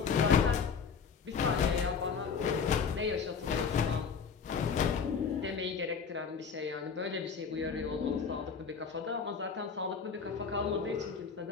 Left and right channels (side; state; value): right; quieter; 6.0 dB